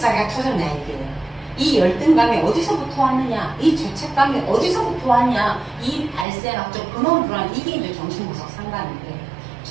터졌냐 이게. 이 열등감이 어디서부터 왔느냐, 이 죄책감이 어디서부터 왔냐, 이 발생학적 근원으로 들어가는 이게 이제 정신분석 상담인데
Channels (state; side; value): drops out; left; at 6.2 s